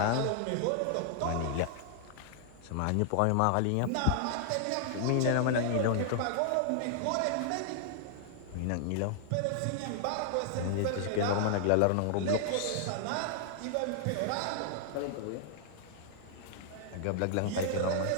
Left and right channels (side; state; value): both; different; correlation -0.01